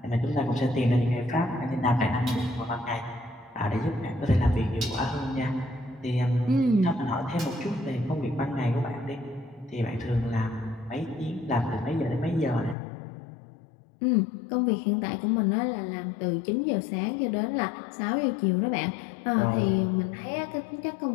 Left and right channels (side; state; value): right; drops out; at 12.8 s